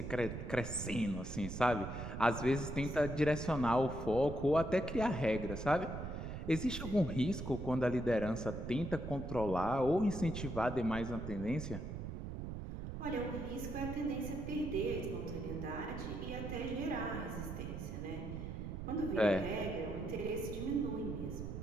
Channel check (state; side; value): noise; right; rumble, 6 dB below the sound